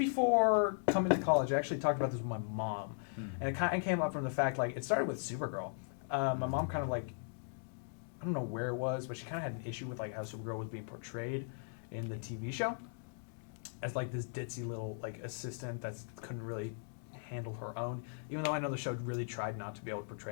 coming to college, I actually talked about this with my mom, and it kind of came up from the fact like it started with Supergirl. My mom kind of like, I don't know where it was, but she kind of had an issue with like how Supergirl was being portrayed in the TV show as like this ditzy little like assistant that couldn't really handle her own. Even though I know the show really tried not to be able to portray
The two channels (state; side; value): silent; right; digital silence